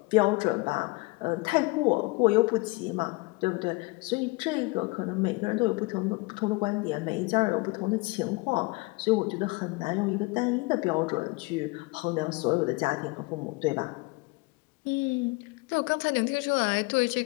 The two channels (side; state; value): right; quieter; 25.4 dB